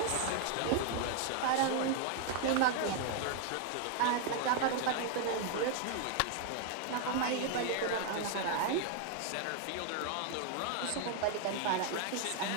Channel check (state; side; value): different; both; correlation 0.00